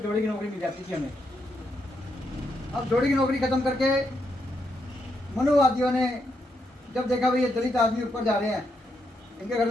जोड़े की नौकरी मिल जाती थी हमें। अब जोड़ी की नौकरी खत्म करके मनुवादियों ने जब देखा भाई ये दलित आदमी ऊपर जा रहे हैं, इनके घर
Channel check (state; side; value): normal; both; correlation 0.80